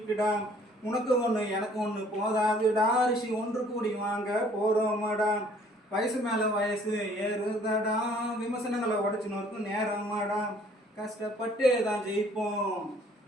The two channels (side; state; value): both; normal; correlation 0.58